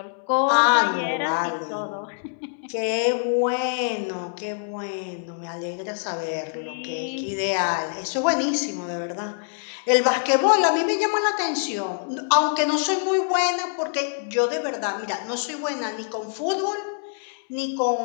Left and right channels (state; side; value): silent; right; digital silence